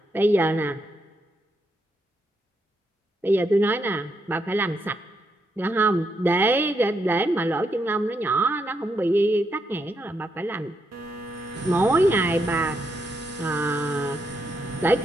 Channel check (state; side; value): normal; both; correlation 0.80